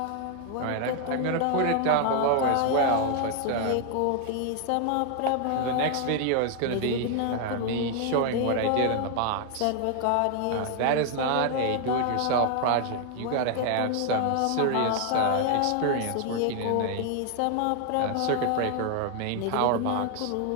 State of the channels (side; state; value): both; different; correlation 0.00